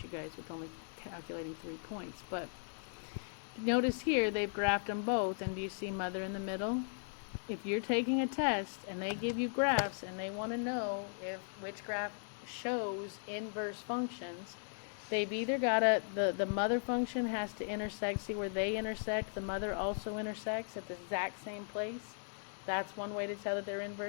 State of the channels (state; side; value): silent; right; digital silence